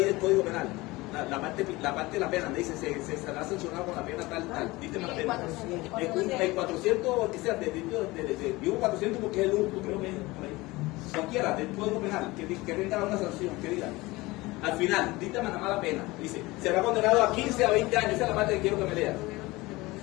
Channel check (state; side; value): quieter; right; 21.1 dB